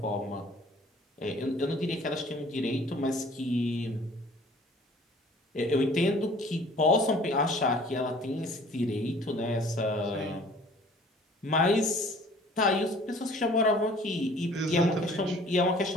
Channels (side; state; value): both; normal; correlation 0.51